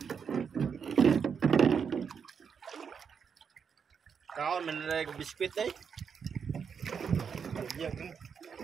Kaon manlag biskwit eh. Yan.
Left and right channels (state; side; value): quieter; left; 6.7 dB